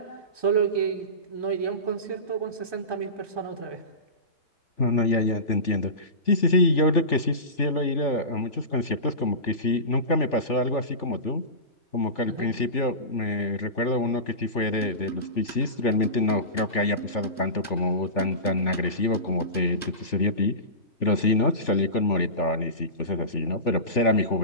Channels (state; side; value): late; right; 3.4 ms